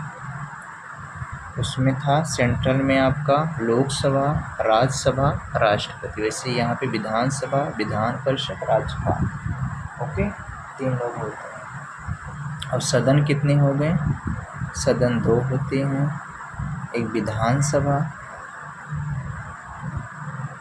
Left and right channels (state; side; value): identical; both; correlation 1.00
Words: उसमें था सेंट्रल में आपका लोकसभा, राज्यसभा, राष्ट्रपति, वैसे यहाँ पे विधानसभा, विधान परिषद, राज्यपाल। ओके, 3 लोग होते हैं। अब सदन कितने हो गए, सदन 2 होते हैं। एक विधानसभा